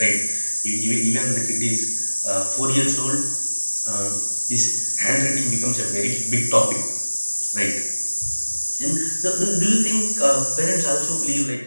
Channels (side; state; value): both; inverted; correlation -1.00